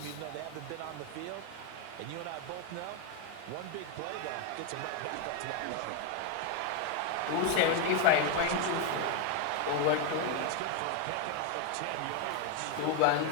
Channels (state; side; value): different; both; correlation 0.01